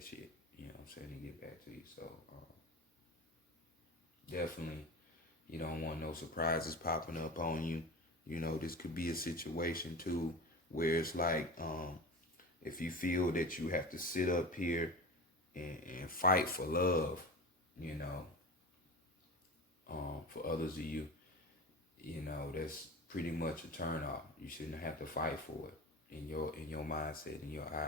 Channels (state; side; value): normal; both; correlation 0.30